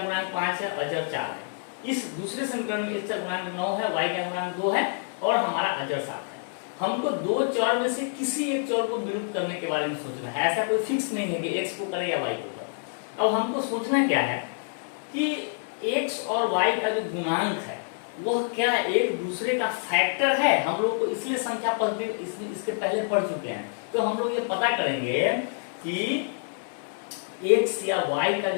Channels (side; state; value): right; silent; 60 dB below the other